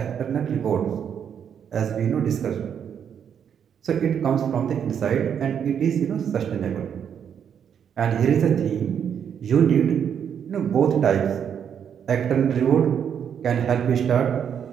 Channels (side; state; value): left; quieter; 8.2 dB